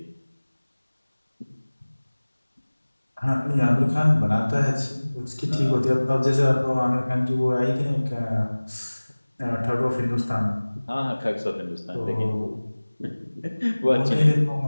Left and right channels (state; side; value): inverted; both; correlation -1.00